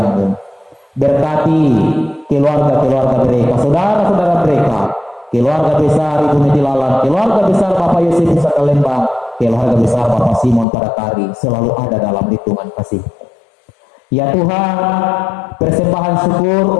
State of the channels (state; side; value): drops out; right; at 10.7 s